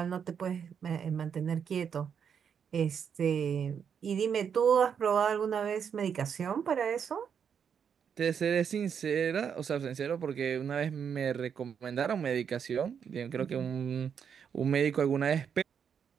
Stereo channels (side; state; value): left; quieter; 7.4 dB